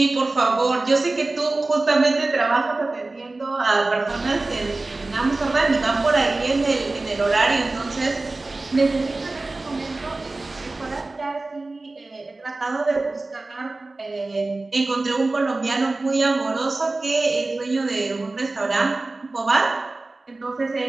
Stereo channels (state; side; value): quieter; left; 3.2 dB